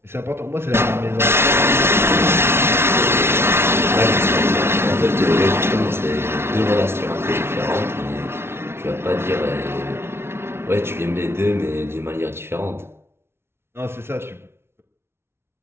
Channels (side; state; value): left; late; 0.12 ms